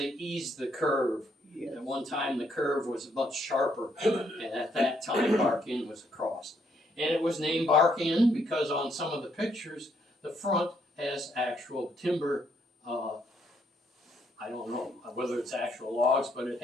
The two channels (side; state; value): both; normal; correlation 0.72